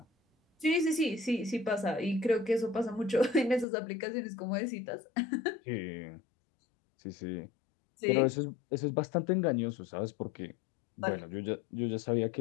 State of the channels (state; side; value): drops out; right; at 3.7 s